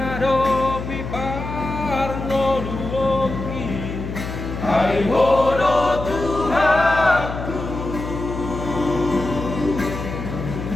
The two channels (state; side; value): noise; left; hum, 7 dB below the sound